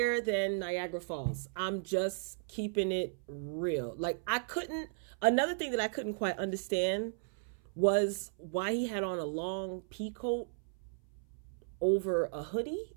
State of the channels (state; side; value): silent; left; 54 dB below the other